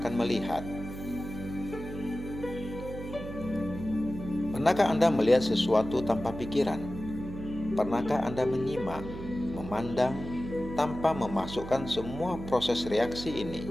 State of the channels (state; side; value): noise; right; hum, 10 dB below the sound